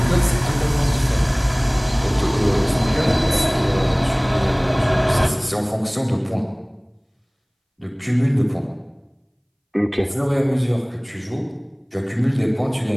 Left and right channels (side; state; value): both; identical; correlation 1.00